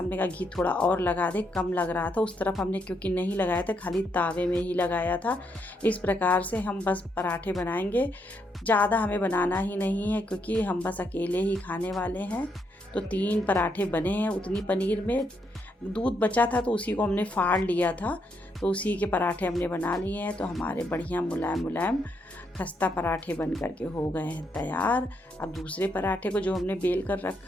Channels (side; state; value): both; normal; correlation 0.77